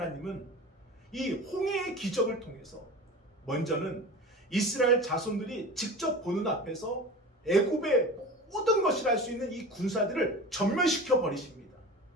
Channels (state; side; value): normal; both; correlation 0.34